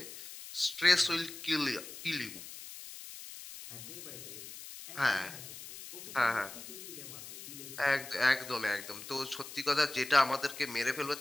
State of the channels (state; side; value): noise; left; hiss, 12 dB below the sound